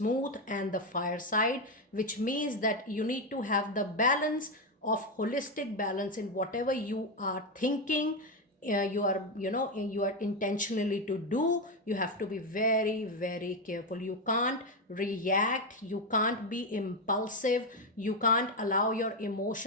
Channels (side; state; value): both; normal; correlation 0.09